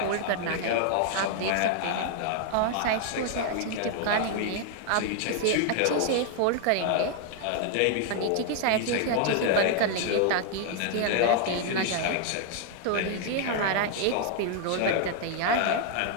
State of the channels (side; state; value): both; different; correlation 0.00